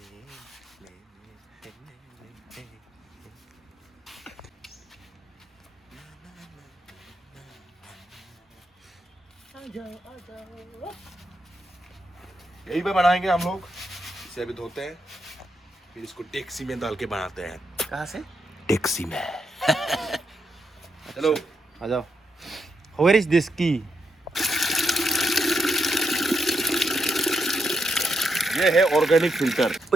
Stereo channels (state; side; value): normal; both; correlation 0.82